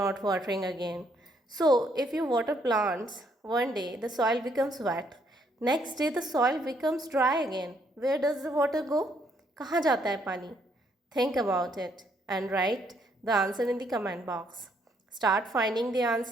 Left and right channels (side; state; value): both; normal; correlation 0.71